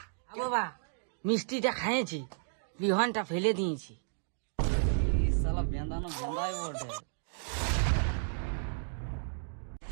বাবা মিষ্টিটা খাইয়েছি, বিহানটা ফেলে দিয়েছি। সালা বেঁধানো বেঁধাই বটে।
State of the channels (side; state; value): left; silent; digital silence